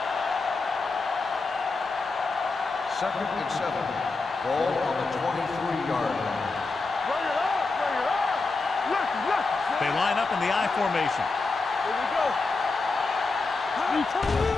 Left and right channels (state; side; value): quieter; right; 3.8 dB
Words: Second and 7. Ball on the 23-yard line. Bring it up. Bring it up. Look. They line up in the I formation. Here we go. We turn it